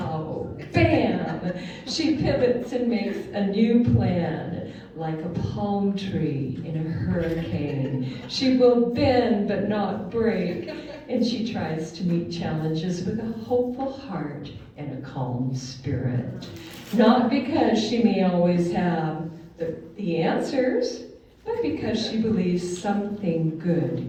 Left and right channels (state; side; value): identical; both; correlation 1.00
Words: bam, she pivots and makes a new plan. Like a palm tree in a hurricane. She will bend but not break, and she tries to meet challenges with a hopeful heart and a calm spirit. Not because she may always have the answers, but because she believes something